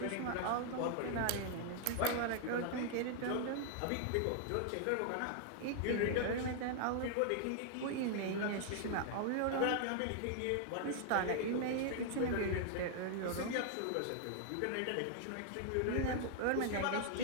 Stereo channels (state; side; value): different; both; correlation 0.00